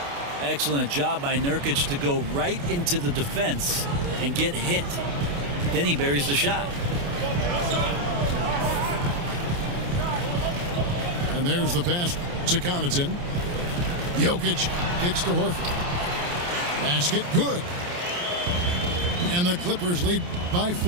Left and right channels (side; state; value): left; late; 28 ms